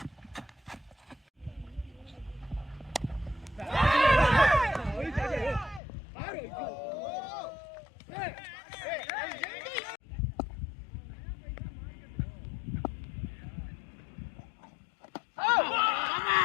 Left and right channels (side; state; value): right; drops out; at 5.8 s